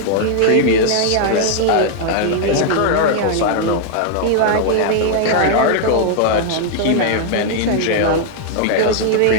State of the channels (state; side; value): different; both; correlation 0.00